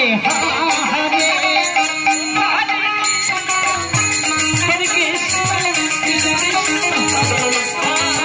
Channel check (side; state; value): both; identical; correlation 1.00